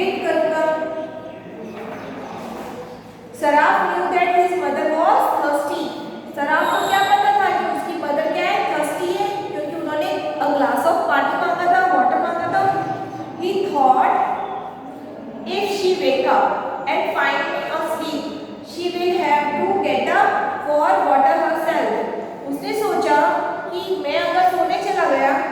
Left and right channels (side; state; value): both; identical; correlation 1.00